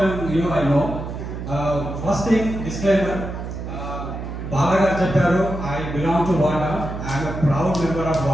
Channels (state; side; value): noise; right; hum, 7 dB below the sound